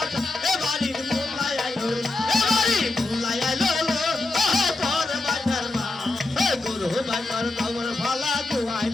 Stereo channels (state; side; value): quieter; right; 3.1 dB